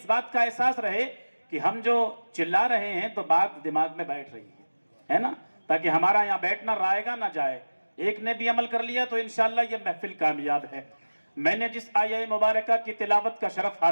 بات کا احساس رہے کہ ہم جو چلا رہے ہیں تو بات دماغ میں بیٹھ رہی ہے نا، تاکہ ہمارا یہاں بیٹھنا رائے گا نہ جائے۔ ایک نے بھی عمل کر لیا تو انشاءاللہ یہ محفل کامیاب ہے۔ میں نے جس آیہ مبارکہ کی تلاوت کا شرف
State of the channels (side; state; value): both; inverted; correlation -1.00